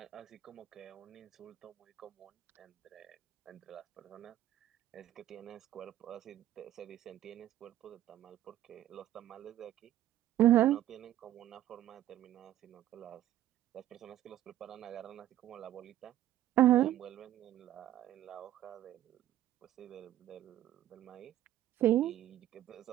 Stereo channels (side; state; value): left; quieter; 13.0 dB